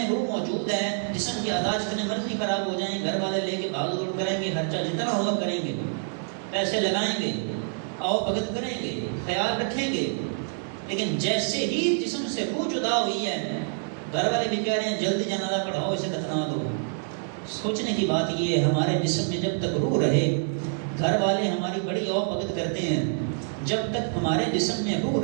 روح موجود ہے، جسم کی اعضاء جتنے مرضی خراب ہو جائیں، گھر والے لے کے بھاگ دوڑ کریں گے، خرچہ جتنا ہوگا کریں گے، پیسے لگائیں گے، آؤ بھگت کریں گے، خیال رکھیں گے. لیکن جیسے ہی جسم سے روح جدا ہوئی ہے، گھر والے بھی کہہ رہے ہیں جلدی جنازہ پڑھاؤ، اسے دفنا دو. سوچنے کی بات یہ ہے، ہمارے جسم میں جب تک روح رہے، گھر والے ہماری بڑی آؤ بھگت کرتے ہیں. جب تک ہمارے جسم میں روح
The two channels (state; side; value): silent; left; digital silence